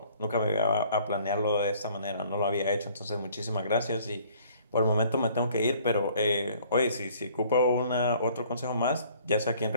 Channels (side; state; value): both; inverted; correlation -0.57